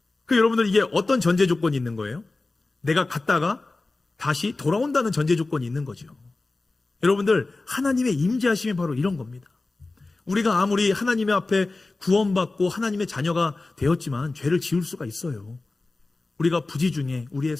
그 여러분들 이게 어떤 전제 조건이 있는 거예요? 내가 갔다가 다시 돌아온다는 전제 조건이 있는 거죠. 여러분들 하나님의 임재하심이 바로 이런 겁니다. 우리가 아무리 하나님의 앞에 구원받고 하나님의 자녀가 되었지만 죄를 지을 수가 있어요. 우리가 부지 중에, 우리의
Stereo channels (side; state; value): right; quieter; 3.3 dB